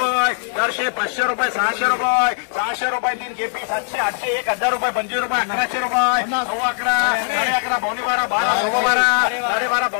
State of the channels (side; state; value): right; silent; digital silence